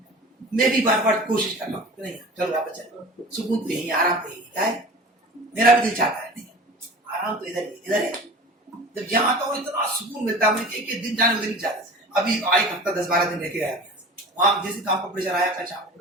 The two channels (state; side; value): normal; both; correlation 0.38